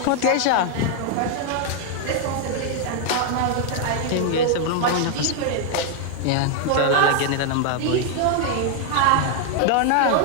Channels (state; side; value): different; both; correlation 0.00